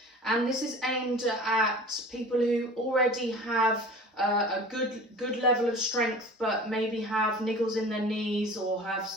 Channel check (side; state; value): both; normal; correlation 0.40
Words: and this is aimed at people who already have a good level of strength but maybe have niggles in their knees or have